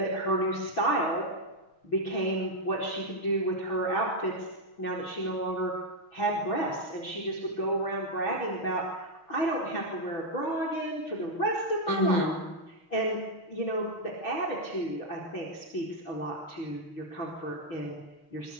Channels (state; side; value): late; right; 6.3 ms